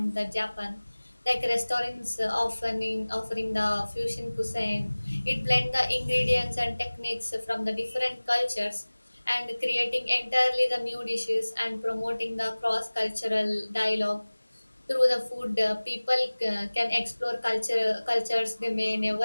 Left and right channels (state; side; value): inverted; both; correlation -1.00